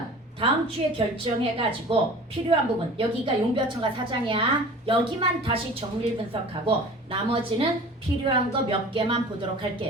다음 주에 결정해가지고 필요한 부분, 여기가 용비어천가 4장이야. 여기만 다시 정밀 분석하고 나머지는 필요한 거 몇 개만 보도록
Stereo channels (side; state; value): both; normal; correlation 0.41